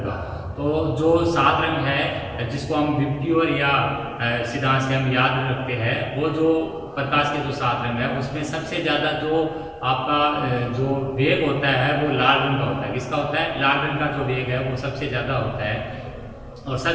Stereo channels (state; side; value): identical; both; correlation 1.00